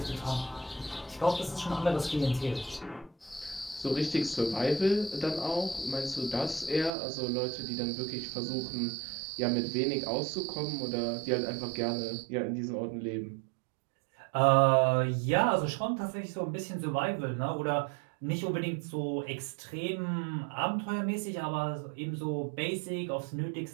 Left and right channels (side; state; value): left; drops out; at 6.9 s